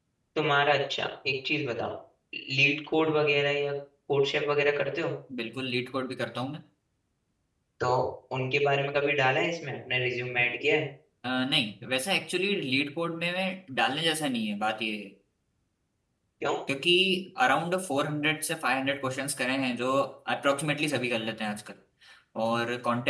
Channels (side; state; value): both; identical; correlation 1.00